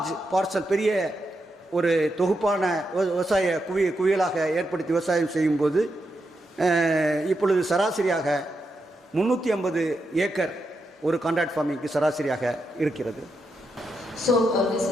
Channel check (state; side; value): normal; both; correlation 0.84